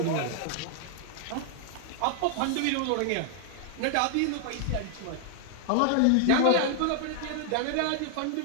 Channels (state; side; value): different; both; correlation 0.00